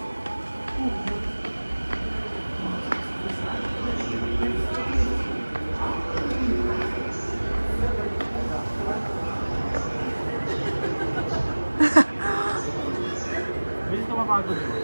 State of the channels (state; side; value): inverted; both; correlation -1.00